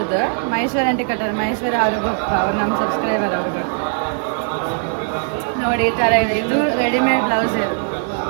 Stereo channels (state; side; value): silent; left; 66 dB below the other